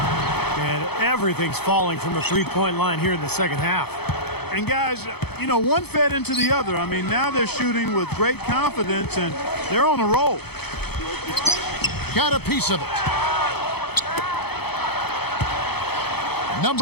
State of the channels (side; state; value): right; late; 0.97 ms